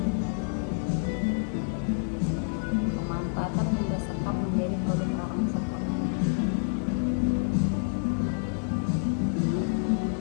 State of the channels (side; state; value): right; silent; digital silence